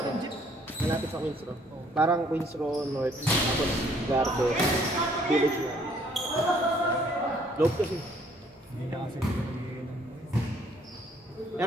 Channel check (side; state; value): both; normal; correlation 0.63